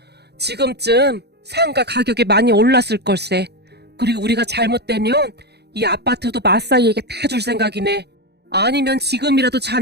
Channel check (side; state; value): left; late; 0.48 ms